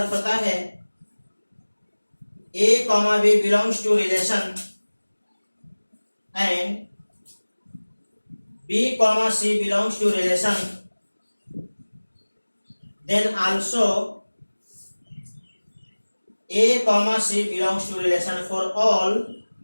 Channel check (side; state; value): both; inverted; correlation -1.00